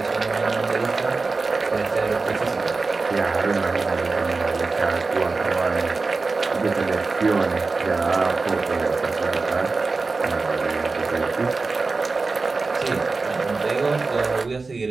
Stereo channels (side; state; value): left; quieter; 3.9 dB